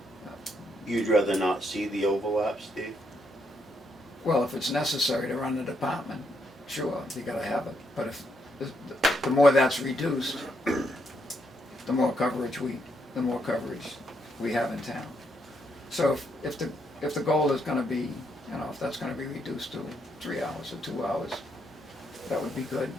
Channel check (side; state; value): both; normal; correlation 0.76